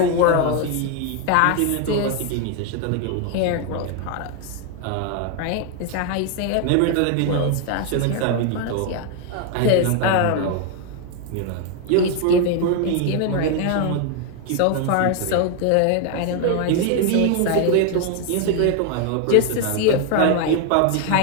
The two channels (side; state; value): both; different; correlation 0.01